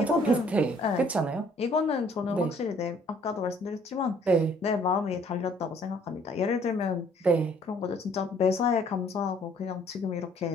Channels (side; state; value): both; normal; correlation 0.60